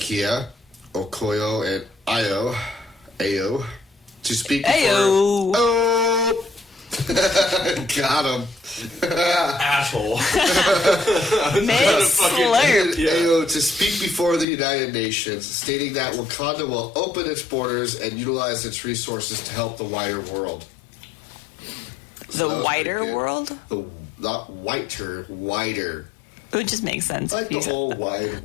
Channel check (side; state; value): right; drops out; at 14.5 s